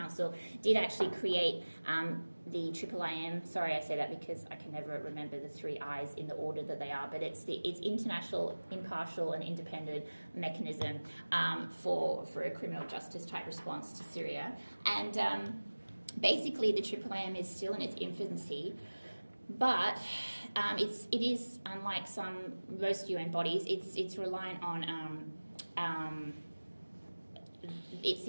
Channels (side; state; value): both; inverted; correlation -1.00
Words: did actually create the IIIM. Sorry, I say that because I can never remember the three I's in the order that they are, but it's international, impartial, and independent mechanism for a criminal justice type response to Syria. And basically, the IIIM is still in its infancy. But it is, unlike most UN bodies, it's reliant on